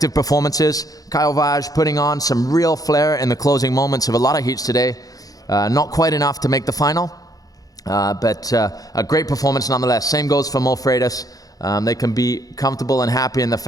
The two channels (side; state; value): right; late; 0.18 ms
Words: performances. Kyle Vaj putting on some real flair in the closing moments of a lot of heats today. Not quite enough to make the final, but a great performance nonetheless. Same goes for Mo Freitas. They can be comfortable and happy in the